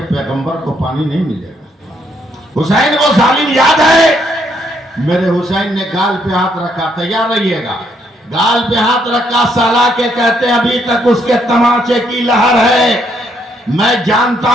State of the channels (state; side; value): normal; both; correlation 0.72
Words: پیغمبر کو پانی نہیں ملے گا۔ حسین وہ ظالم یاد ہے؟ میرے حسین نے گال پہ ہاتھ رکھا، تیار رہیے گا، گال پہ ہاتھ رکھا، سالا کے کہتے ہیں ابھی تک اس کے تماچے کی لہر ہے، میں جانتا